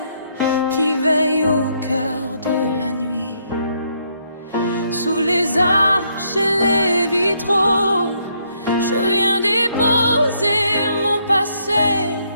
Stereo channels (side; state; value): both; inverted; correlation -0.72